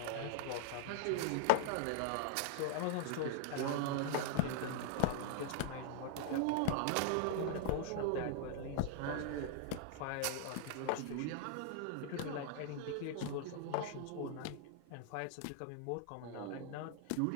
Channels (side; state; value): both; different; correlation -0.01